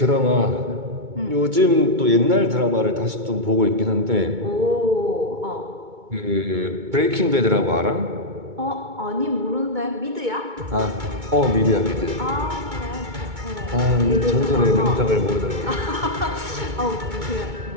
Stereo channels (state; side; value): late; left; 2.2 ms